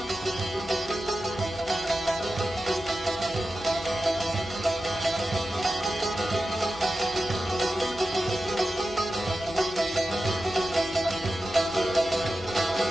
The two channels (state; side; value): normal; both; correlation 0.92